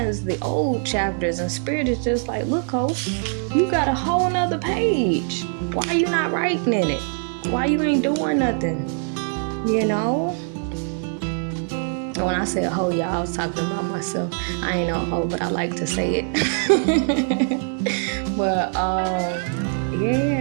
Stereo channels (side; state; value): left; silent; 56 dB below the other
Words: the old chapters, and Spirit is just like, look, ho, you got a whole nother page. Why you not writing in it? Why you ain't doing nothing? You know? When I said hoe, y'all, I was talking about myself. I ain't no hoe, but I like to say it. But